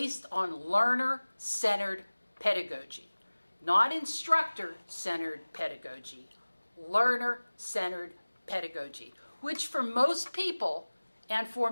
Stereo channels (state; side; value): inverted; both; correlation -1.00